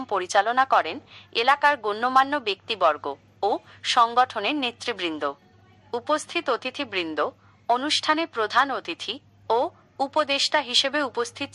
পরিচালনা করেন এলাকার গণ্যমান্য ব্যক্তিবর্গ ও সংগঠনের নেতৃবৃন্দ। উপস্থিত অতিথিবৃন্দ, অনুষ্ঠানে প্রধান অতিথি ও উপদেষ্টা হিসেবে উপস্থিত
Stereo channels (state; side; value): identical; both; correlation 1.00